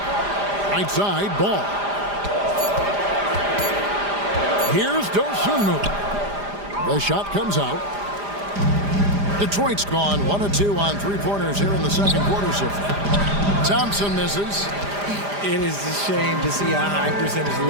Right side, Ball. Here's Dosunmu. The shot comes out. Detroit's gone 1 of 2 on 3-pointers here in the second quarter so far. Thompson misses. It is a shame to see a high percentage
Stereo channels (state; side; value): late; left; 5.0 ms